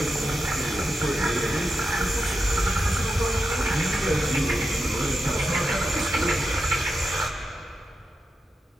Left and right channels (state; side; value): normal; both; correlation 0.88